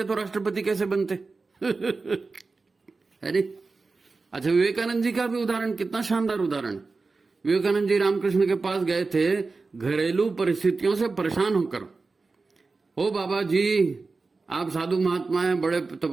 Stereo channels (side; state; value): left; quieter; 4.0 dB